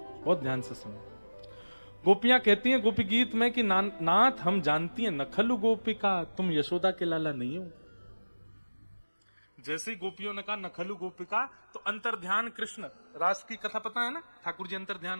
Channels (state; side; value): inverted; both; correlation -1.00